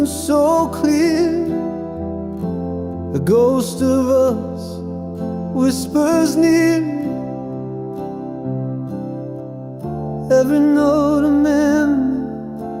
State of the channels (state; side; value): identical; both; correlation 1.00